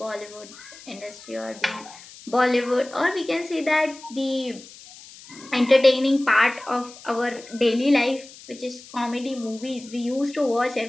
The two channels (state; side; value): noise; left; hiss, 19 dB below the sound